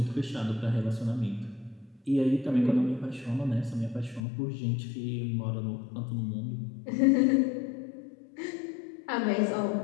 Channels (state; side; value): drops out; right; at 4.2 s